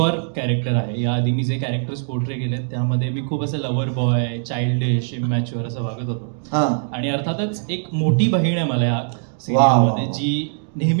कॅरेक्टर आहे. याआधी मी जे कॅरेक्टर्स पोर्ट्रे केले त्यामध्ये मी खूप असं लव्हर बॉय, चाइल्डिश, इमॅच्युअर असं वागत होतो. आणि अर्थातच एक मोठी बहीण आहे मला या सिरियलमध्ये, जी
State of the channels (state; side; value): silent; left; digital silence